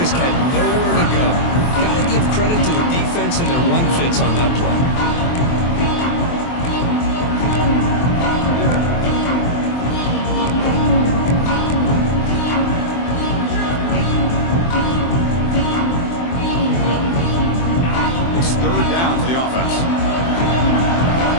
had nowhere to go. Got to give credit to the defense and their run fits on that play.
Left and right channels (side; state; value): right; late; 23 ms